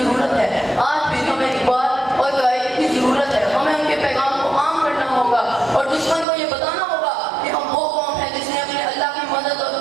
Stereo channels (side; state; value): left; drops out; at 6.2 s